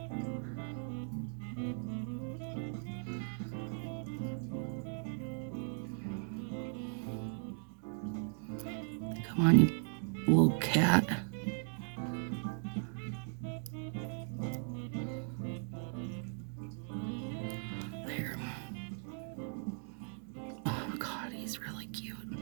Come on, you little cat. There. Oh God, he's really cute.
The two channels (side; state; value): left; silent; 52 dB below the other